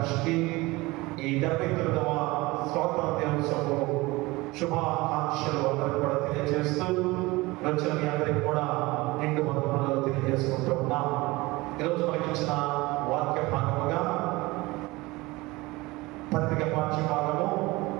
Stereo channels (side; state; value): left; quieter; 21.7 dB